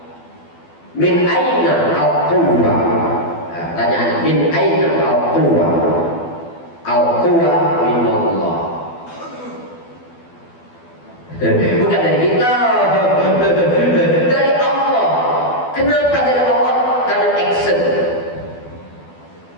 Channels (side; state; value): right; late; 12 ms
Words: Min aina al-quwwah. Tanyaan, min aina al-quwwah? Al-quwwah min Allah. Bukan dari kita, dari Allah. Kenapa dari Allah?